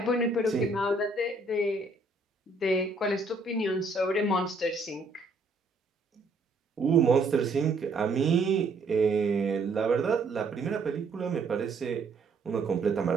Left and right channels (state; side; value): quieter; left; 3.3 dB